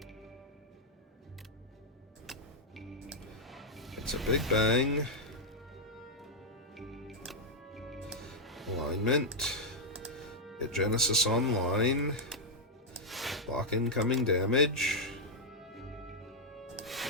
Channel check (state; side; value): normal; both; correlation -0.03